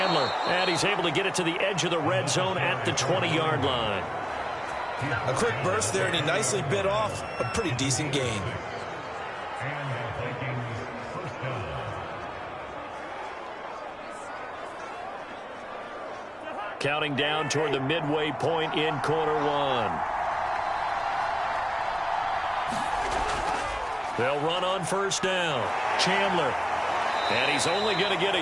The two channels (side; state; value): both; identical; correlation 1.00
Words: and he's able to get it to the edge of the red zone at the 20-yard line. A quick burst there, and he nicely bit off a pretty decent gain. Counting down toward the midway point in quarter 1. They'll run on first down. Chandler. And he's only going to get